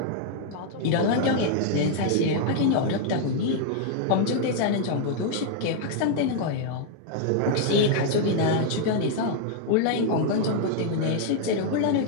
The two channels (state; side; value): different; both; correlation 0.00